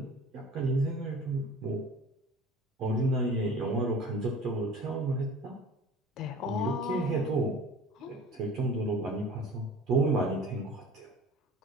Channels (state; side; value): normal; both; correlation 0.42